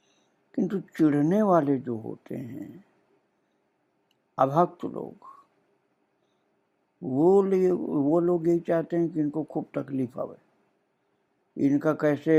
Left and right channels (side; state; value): both; identical; correlation 1.00